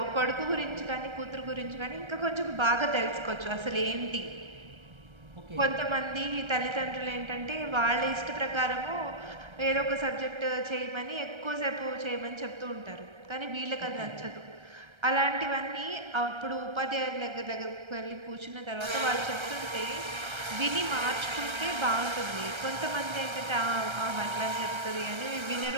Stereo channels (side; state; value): left; late; 1.3 ms